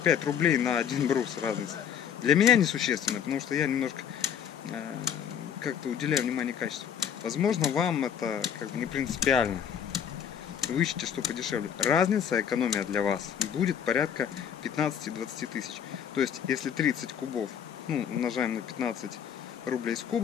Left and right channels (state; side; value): quieter; right; 8.4 dB